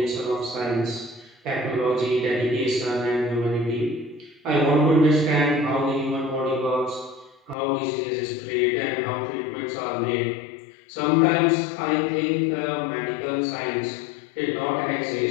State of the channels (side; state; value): right; drops out; at 7.6 s